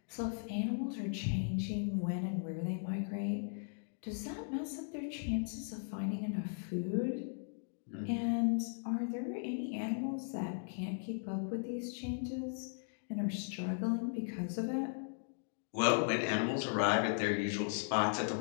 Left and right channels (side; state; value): right; silent; digital silence